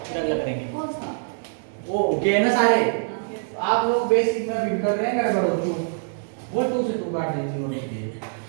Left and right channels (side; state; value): left; silent; digital silence